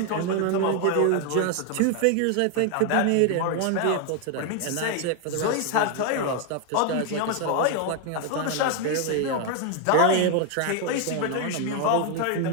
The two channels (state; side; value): different; both; correlation 0.01